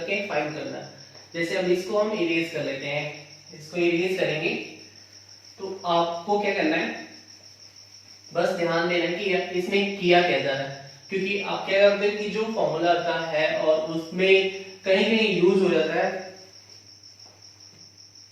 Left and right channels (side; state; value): both; identical; correlation 1.00